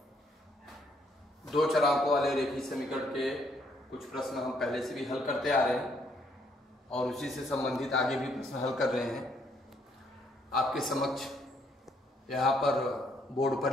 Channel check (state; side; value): normal; both; correlation 0.69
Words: दो चरांकों वाले रेखीय समीकरण के कुछ प्रश्न हम पहले से भी हल करते आ रहे हैं और उसी से संबंधित आगे भी प्रश्न हल कर रहे हैं। आपके समक्ष यहाँ पर बोर्ड